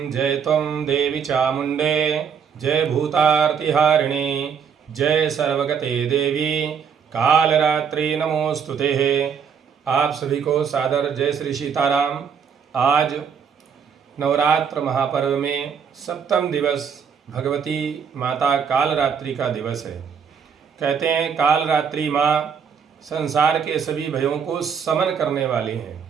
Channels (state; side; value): quieter; left; 7.0 dB